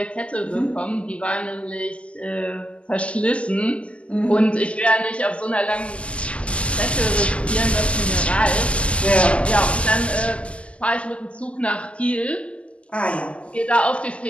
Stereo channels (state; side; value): late; right; 0.057 ms